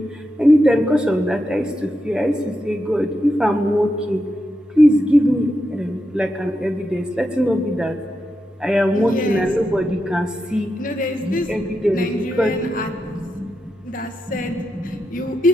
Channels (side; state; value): both; normal; correlation 0.86